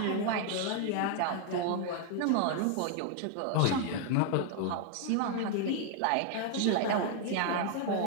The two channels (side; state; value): both; different; correlation 0.00